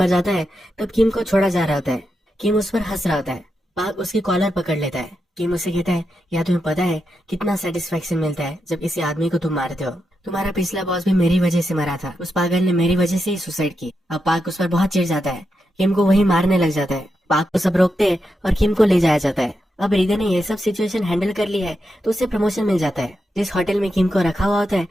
जाता है तब किम को छोड़ा जा रहा होता है। किम उस पर हंस रहा होता है। पार्क उसकी कॉलर पकड़ लेता है। किम उसे कहता है या तुम्हें पता है कितना सेटिस्फेक्शन मिलता है जब किसी आदमी को तुम मारते हो। तुम्हारा पिछला बॉस भी मेरी वजह से मरा था, उस पागल ने मेरी वजह से ही सुसाइड की। अब पार्क उस पर बहुत चिढ़ जाता है। किम को वही मारने लग जाता है। पार्क को सब रोकते हैं और किम को ले जाया जाता है। अब हृदय ने ये सब सिचुएशन हैंडल कर ली है तो उसे प्रमोशन मिल जाता है। जिस होटल में किम को रखा हुआ होता है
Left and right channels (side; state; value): both; normal; correlation 0.86